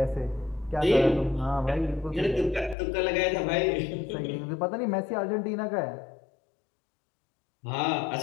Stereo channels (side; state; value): right; drops out; at 2.8 s